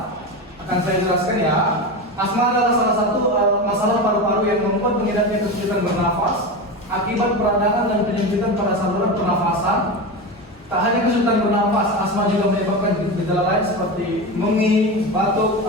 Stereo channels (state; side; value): normal; both; correlation 0.21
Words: Akan saya jelaskan ya. Asma adalah salah satu masalah paru-paru yang membuat pengidapnya kesulitan bernafas akibat peradangan dan penyempitan pada saluran pernafasan. Tak hanya kesulitan bernafas, asma juga menyebabkan gejala lain seperti mengi, batuk,